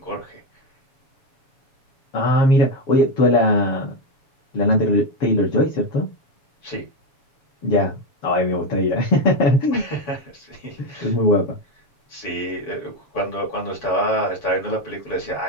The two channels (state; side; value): late; right; 7.0 ms